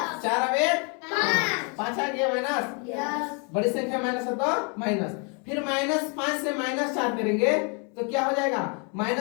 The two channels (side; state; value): right; quieter; 35.6 dB